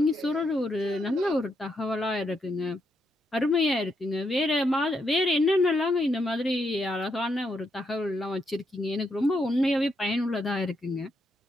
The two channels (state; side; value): normal; both; correlation 0.79